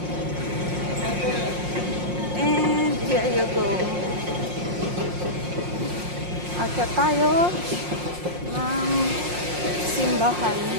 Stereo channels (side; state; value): left; late; 5.6 ms